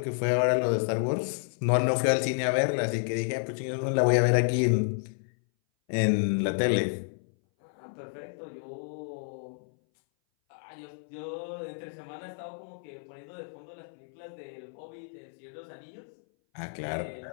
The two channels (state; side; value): silent; right; 58 dB below the other